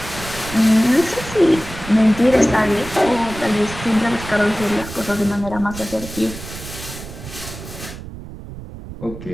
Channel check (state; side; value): noise; right; rumble, 12 dB below the sound